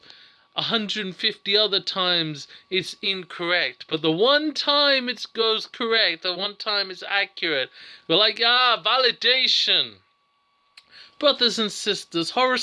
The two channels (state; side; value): identical; both; correlation 1.00